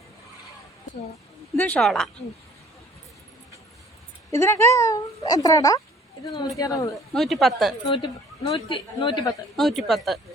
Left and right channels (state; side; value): normal; both; correlation 0.54